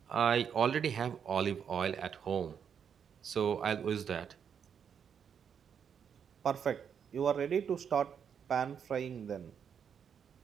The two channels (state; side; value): quieter; left; 7.5 dB